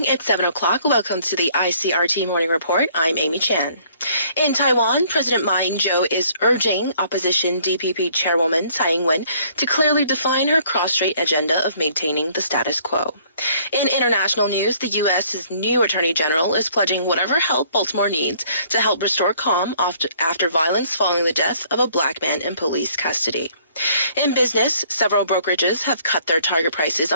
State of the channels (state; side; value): inverted; both; correlation -0.60